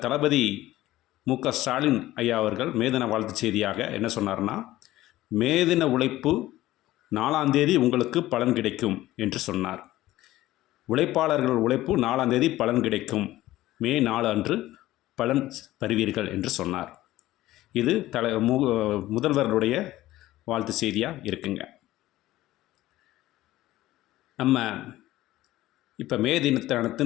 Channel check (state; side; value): quieter; right; 15.9 dB